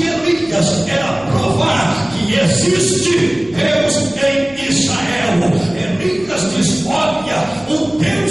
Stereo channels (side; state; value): left; noise; hum, 24 dB below the sound